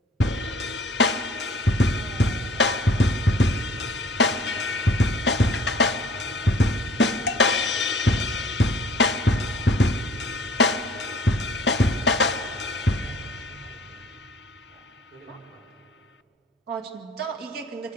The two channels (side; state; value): both; normal; correlation 0.53